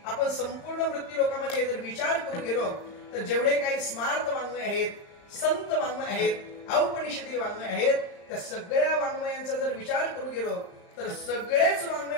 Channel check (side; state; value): right; late; 35 ms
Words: आपण संपूर्ण मृत्यू लोकांमध्ये जर विचार करून गेलो तर जेवढे काही स्मार्त वाङ्मय आहेत, संत वाङ्मय आहेत, औपनिषदी वाङ्मय आहेत, त्या सगळ्या वाङ्मयांचा जर विचार करू गेलो तर सगळेच वाङ्मय